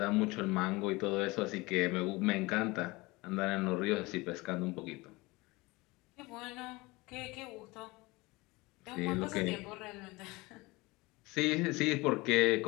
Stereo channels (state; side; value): quieter; right; 22.8 dB